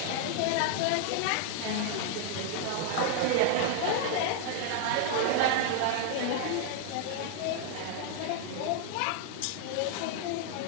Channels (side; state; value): both; different; correlation 0.00